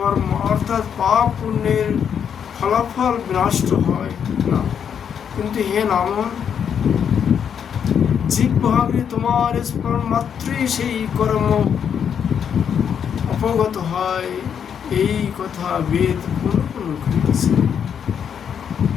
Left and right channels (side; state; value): right; quieter; 7.9 dB